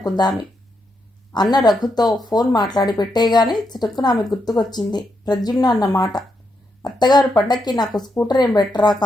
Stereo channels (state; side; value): normal; both; correlation 0.82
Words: అన్న రఘుతో ఫోన్ మాట్లాడి పెట్టేయగానే చిటుక్కున ఆమె గుర్తుకొచ్చింది ప్రద్యుమ్న అన్న మాట. అత్తగారు పండక్కి నాకు స్కూటర్ ఏం పెట్టరా